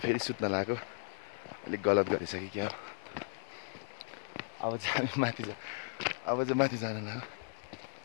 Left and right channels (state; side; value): silent; right; 54 dB below the other